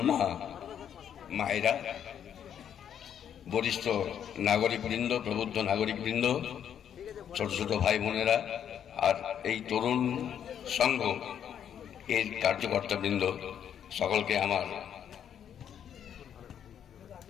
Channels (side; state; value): right; quieter; 9.0 dB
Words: মায়েরা, বরিষ্ঠ নাগরিকবৃন্দ, প্রবুদ্ধ নাগরিকবৃন্দ, ছোট ছোট ভাই বোনেরা, আর এই তরুণ সংঘ এর কার্যকর্তাবৃন্দ, সকলকে আমার